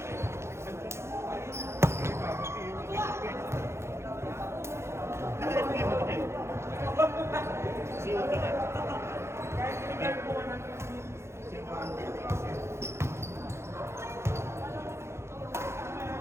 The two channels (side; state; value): left; late; 0.13 ms